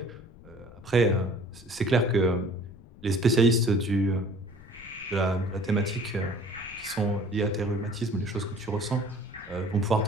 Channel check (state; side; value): noise; left; rumble, 20 dB below the sound